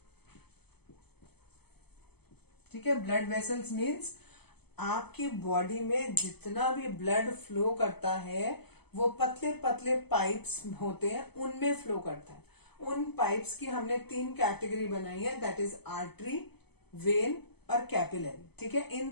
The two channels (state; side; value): late; right; 0.97 ms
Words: ठीक है, ब्लड वेसल्स मीन्स आपकी बॉडी में जितना भी ब्लड फ्लो करता है वो पतले पतले पाइप्स होते हैं उनमें फ्लो करता है। उन पाइप्स की हमने 3 कैटेगरी बनाई है, दैट इज आर्टरी, वेन और कैपिलरी। ठीक है, इन